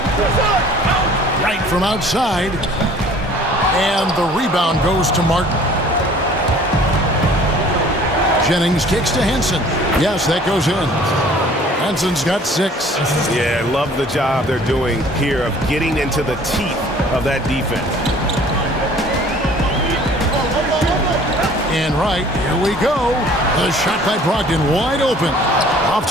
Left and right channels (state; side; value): normal; both; correlation 0.52